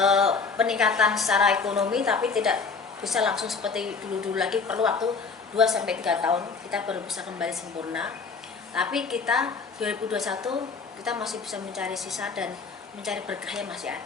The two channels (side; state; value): right; quieter; 4.9 dB